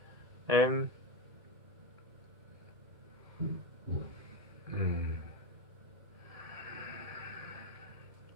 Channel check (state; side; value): late; left; 1.7 ms